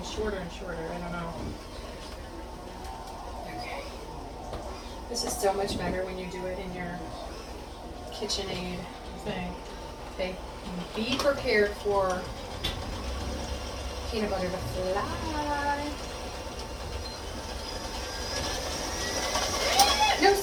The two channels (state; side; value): identical; both; correlation 1.00